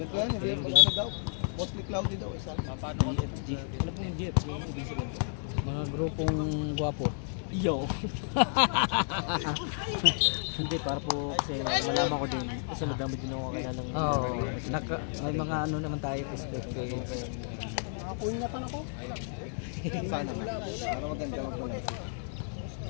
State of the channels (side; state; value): right; silent; digital silence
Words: yan, hindi ano daw. Mostly cloudy daw. Ano po yung GF? Mga grupong gwapo. Yo! Hindi, para po kasi malaman ko din. Kasi madami din ako kaya ng... Oo, may mga ano naman tayo perspective. Nakapunyatan ako. Sana nga. Para maganda mag-vlog.